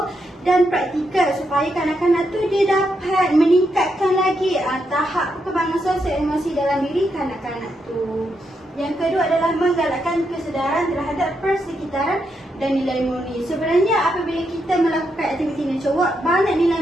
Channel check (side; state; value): both; normal; correlation 0.81